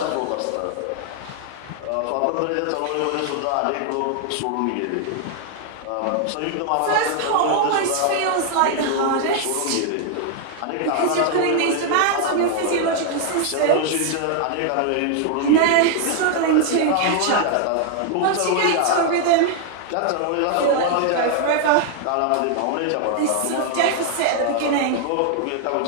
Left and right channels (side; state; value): both; different; correlation 0.00